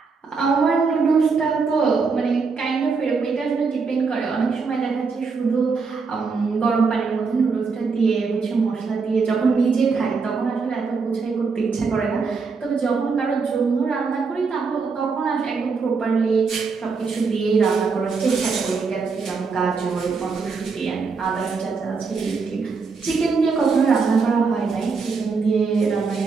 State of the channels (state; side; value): quieter; left; 4.9 dB